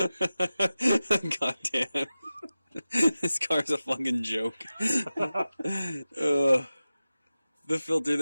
God damn. This car's a fucking joke. The filter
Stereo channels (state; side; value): inverted; both; correlation -0.95